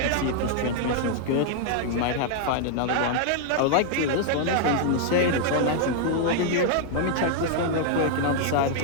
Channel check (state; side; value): different; both; correlation 0.00